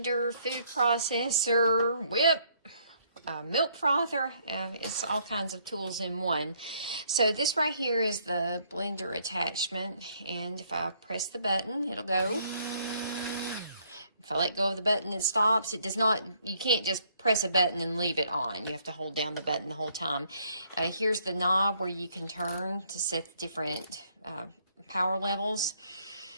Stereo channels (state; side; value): inverted; both; correlation -0.67